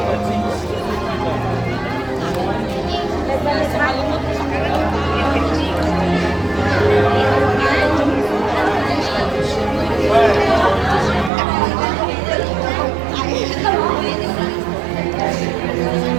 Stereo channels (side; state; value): left; drops out; at 11.3 s